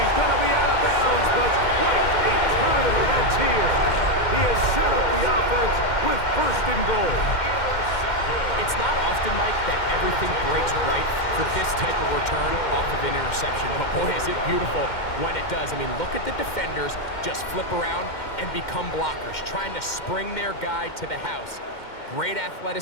going to be out of bounds, but quite a turn of events here. He has set up the offense with first and goal. It's not often, Mike, that everything breaks right for this type of return off of an interception. But boy, is it beautiful when it does. I mean, look at the defenders just flip around and become blockers, trying to spring their guy to the house. Great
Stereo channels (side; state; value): right; late; 2.1 ms